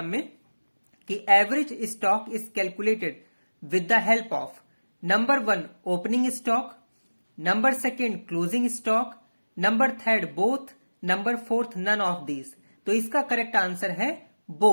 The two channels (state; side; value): inverted; both; correlation -1.00